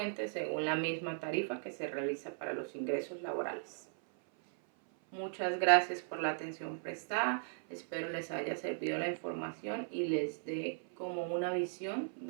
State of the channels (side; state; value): left; silent; 53 dB below the other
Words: según la misma tarifa que se realiza para los ingresos laborales. Muchas gracias por la atención prestada. Espero les haya servido la información y les dé como una visión